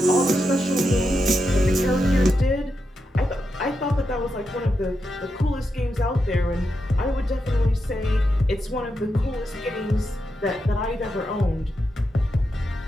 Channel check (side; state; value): both; normal; correlation 0.86